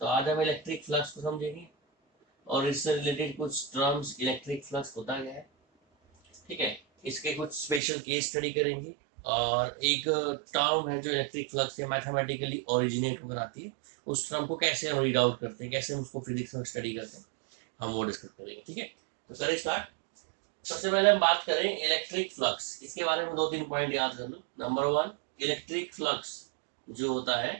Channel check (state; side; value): drops out; left; at 7.8 s